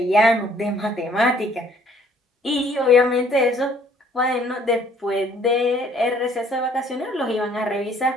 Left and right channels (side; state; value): both; normal; correlation 0.60